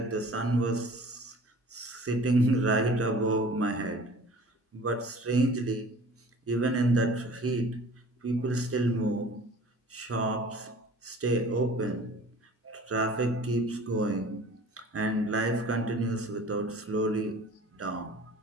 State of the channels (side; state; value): both; normal; correlation 0.46